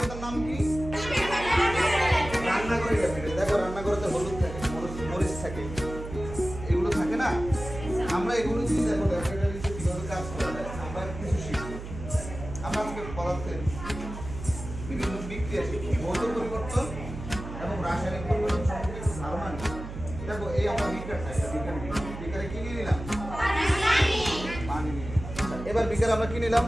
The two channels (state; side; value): noise; right; hum, 10 dB below the sound